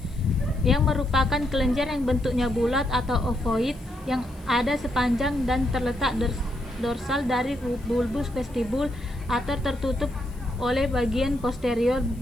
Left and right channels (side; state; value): left; noise; hiss, 28 dB below the sound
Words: yang merupakan kelenjar yang bentuknya bulat atau ovoid yang ada sepanjang dan terletak dorsal dari bulbus vestibul atau tertutup oleh bagian posterior